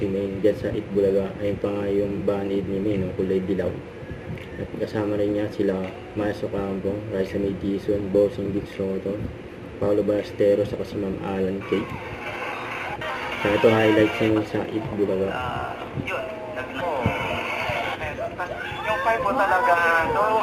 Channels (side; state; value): both; identical; correlation 1.00